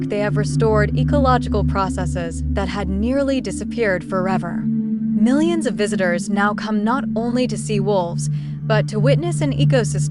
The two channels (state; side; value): identical; both; correlation 1.00